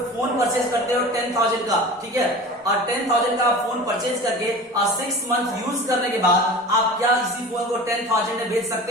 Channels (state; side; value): normal; both; correlation 0.36